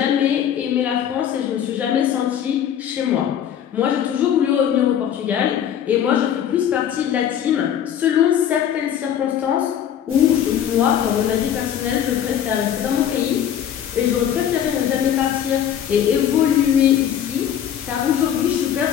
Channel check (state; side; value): quieter; right; 9.7 dB